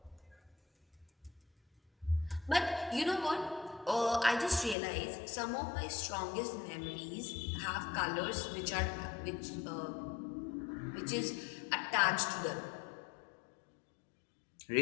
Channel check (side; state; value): right; drops out; at 4.8 s